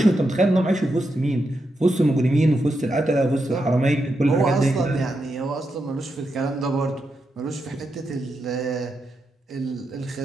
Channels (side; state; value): both; normal; correlation 0.85